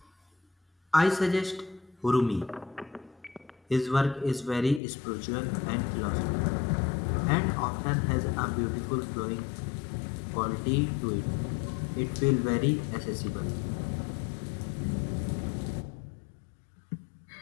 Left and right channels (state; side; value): drops out; right; at 4.8 s